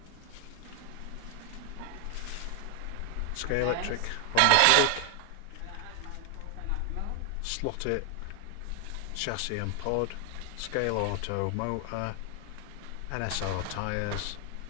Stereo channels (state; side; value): different; both; correlation 0.00